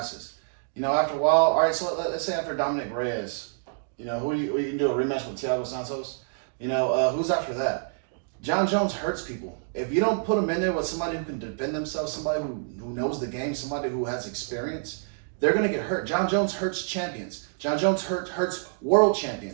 You know, after a while, all right, so let's say after Dominic Reyes, you know, who you can do a rematch with Thiago Santos? You know, who's after that? John Jones hurts people. If you don't put him in there with somebody who can defend themselves, somebody who knows the game, somebody who has experience, they're going to get hurt. John Jones hurts champions. John Jones hurts world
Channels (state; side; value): silent; left; digital silence